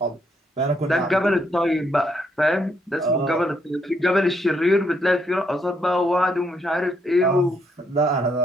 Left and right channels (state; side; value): normal; both; correlation 0.74